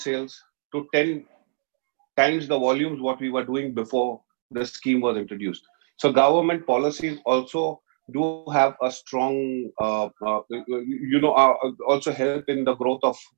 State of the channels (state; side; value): silent; left; 62 dB below the other